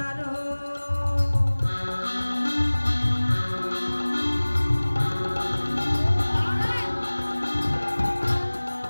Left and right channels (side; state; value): both; inverted; correlation -1.00